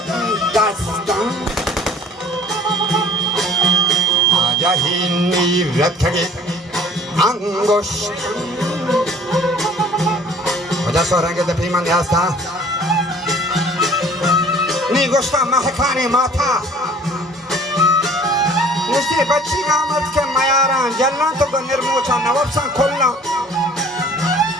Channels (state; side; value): normal; both; correlation 0.51